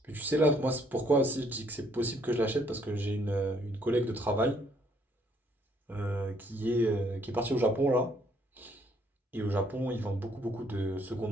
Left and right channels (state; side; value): normal; both; correlation 0.67